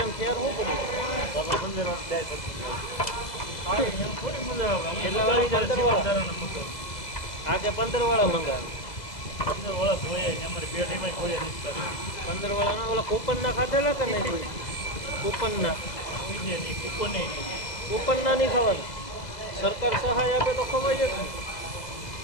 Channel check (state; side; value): late; right; 2.0 ms